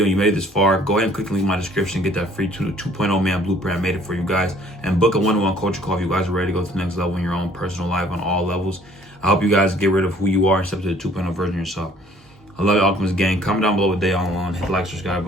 and you made it this far, go ahead and click the link in my description, get that free 2.0 man blueprint. I made it for you guys, and book a one-on-one coaching call if you guys are ready to go to the next level in your own personal life on all levels. I hope you guys get rid of who you are and step to the 2.0 version of yourself. I love you, Alchemist Gang. Comment down below what day on, hit the like, subscribe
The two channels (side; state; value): both; normal; correlation 0.57